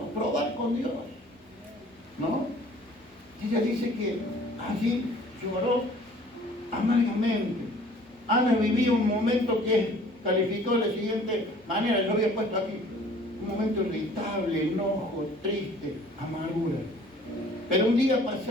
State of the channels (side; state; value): both; normal; correlation 0.52